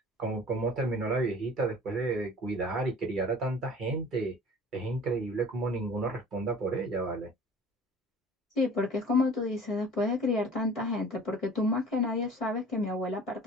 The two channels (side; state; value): both; normal; correlation 0.46